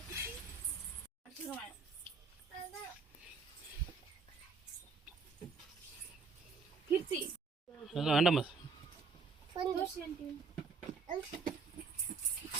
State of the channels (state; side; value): quieter; left; 4.6 dB